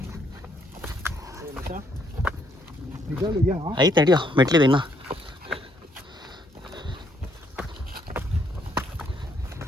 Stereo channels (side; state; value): both; normal; correlation 0.71